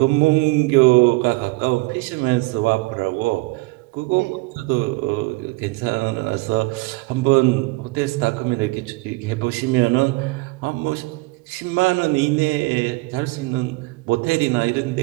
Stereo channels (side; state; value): left; quieter; 23.8 dB